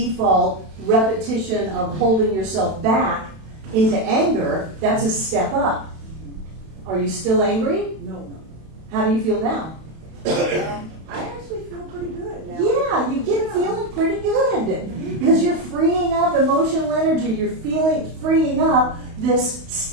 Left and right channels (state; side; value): late; left; 32 ms